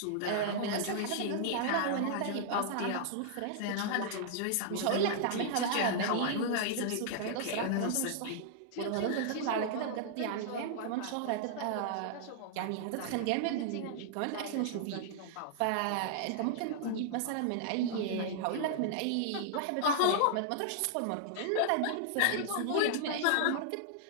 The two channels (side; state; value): both; different; correlation -0.01